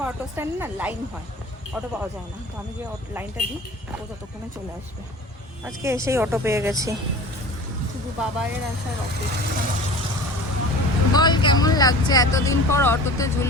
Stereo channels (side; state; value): both; normal; correlation 0.40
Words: অটো স্ট্যান্ড না লাইন হয়, অটো পাওয়া যায় না, তো আমি যে লাইনটা দিই ও ততক্ষণে চলে আসবে। আজকে এসেই অটো পেয়ে গেছি, শুধু বাবাইয়ের আসার অপেক্ষা। বল কেমন লাগছে এতদিন পর অটোতে